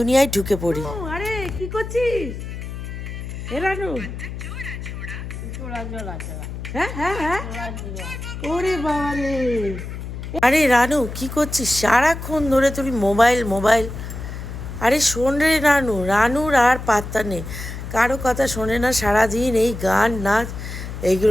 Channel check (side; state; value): left; noise; hum, 8 dB below the sound